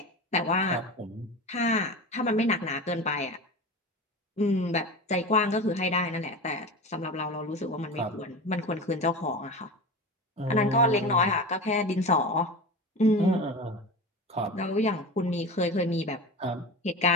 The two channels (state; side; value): normal; both; correlation 0.29